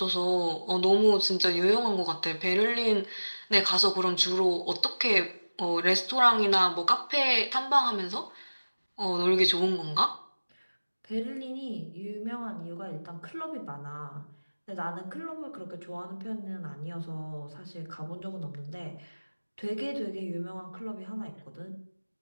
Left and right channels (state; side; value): inverted; both; correlation -1.00